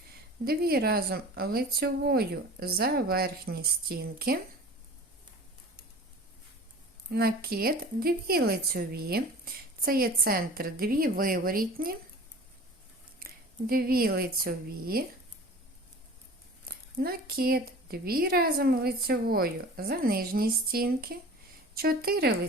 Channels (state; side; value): normal; both; correlation 0.41